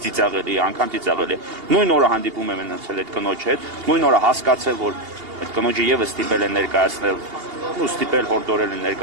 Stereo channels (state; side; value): late; left; 2.8 ms